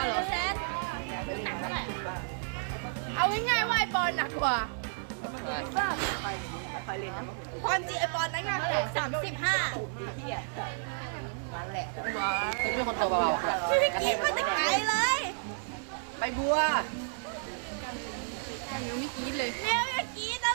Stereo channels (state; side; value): silent; left; digital silence